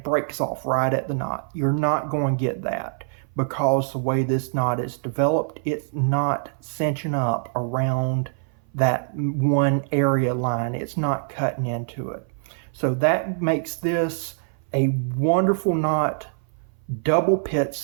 breaks off right at the knot. You're not going to get that because the way this knot is developed, it's not cinching up around that one area line. It's not cutting into it. So that makes this a wonderful knot, double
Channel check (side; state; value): left; silent; 58 dB below the other